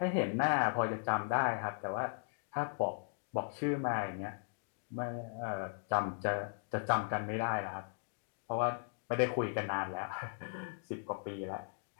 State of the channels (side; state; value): right; silent; digital silence